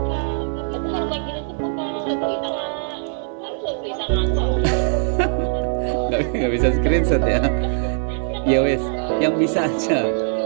Nggak bisa screenshot ya. Ya wes, yang bisa aja.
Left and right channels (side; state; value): left; silent; digital silence